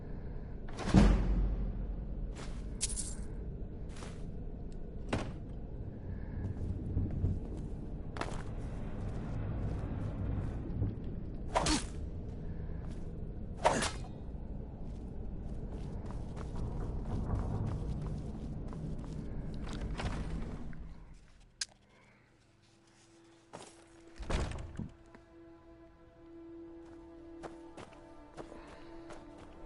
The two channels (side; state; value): both; identical; correlation 1.00